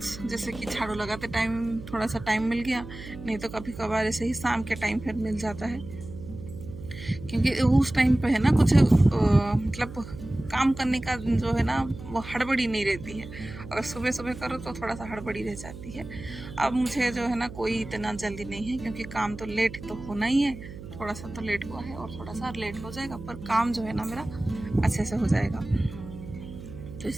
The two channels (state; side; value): noise; right; hum, 13 dB below the sound